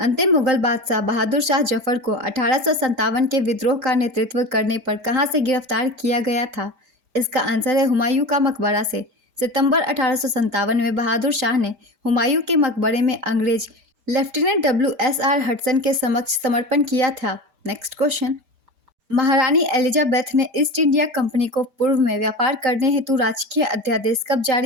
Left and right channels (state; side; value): late; left; 5.0 ms